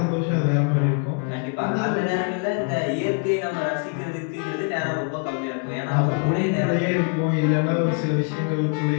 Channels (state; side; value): quieter; right; 39.2 dB